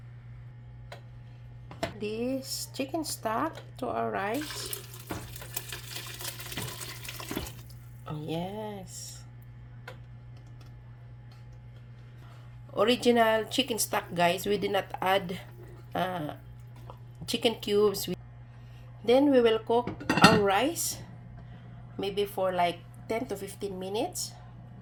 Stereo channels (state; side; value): identical; both; correlation 1.00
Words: This chicken stock to our rice. Yes. Original chicken stock guys, we did not add chicken cubes. Then we will cook our rice maybe for like 10 to 15 minutes.